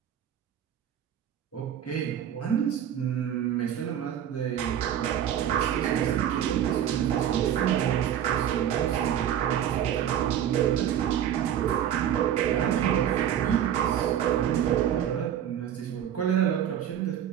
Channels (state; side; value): quieter; left; 10.1 dB